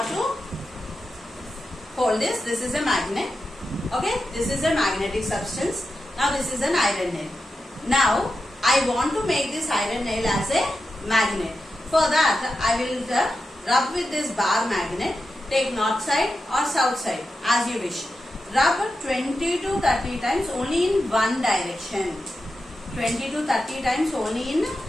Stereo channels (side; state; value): both; normal; correlation 0.90